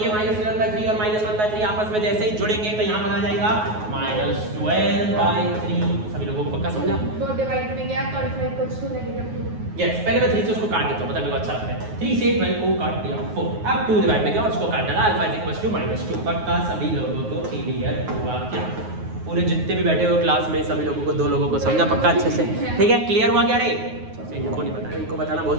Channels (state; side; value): late; left; 9.4 ms